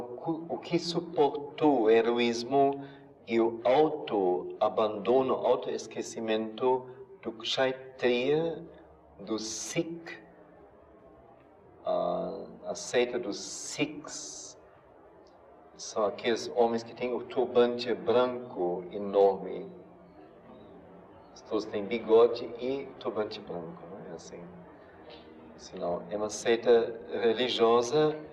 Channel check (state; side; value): identical; both; correlation 1.00